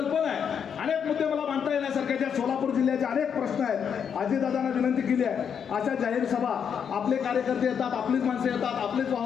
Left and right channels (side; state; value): right; quieter; 7.5 dB